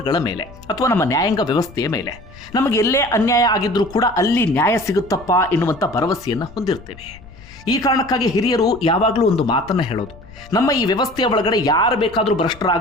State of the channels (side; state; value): left; noise; rumble, 20 dB below the sound